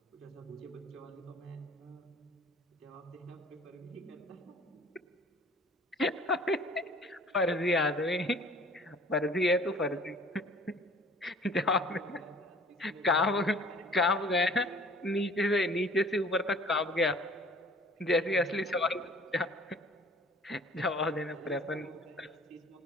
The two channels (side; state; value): both; normal; correlation 0.50